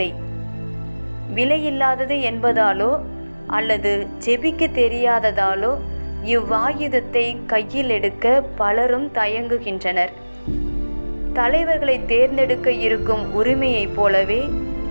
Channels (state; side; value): inverted; both; correlation -1.00